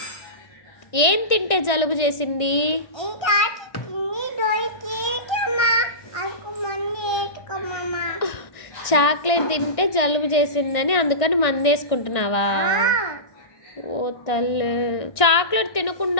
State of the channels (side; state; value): right; late; 1.6 ms